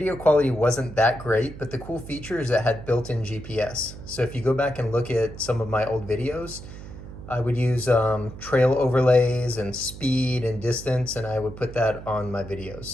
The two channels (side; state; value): right; noise; hum, 13 dB below the sound